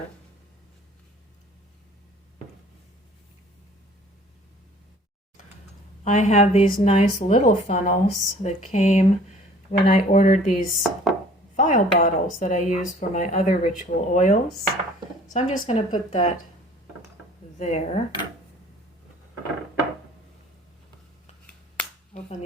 I have these nice little funnels that came when I ordered these vial bottles that I use for my other ritual oils. So I'm just going to put that there. Open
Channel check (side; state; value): both; normal; correlation 0.52